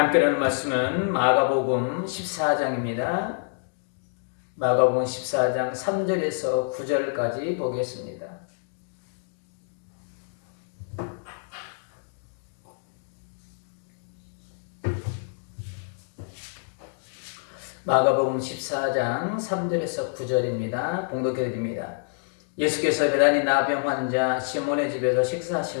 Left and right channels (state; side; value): silent; right; digital silence